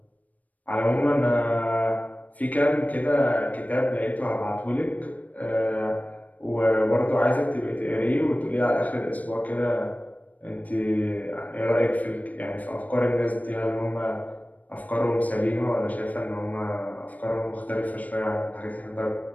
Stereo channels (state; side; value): late; right; 0.073 ms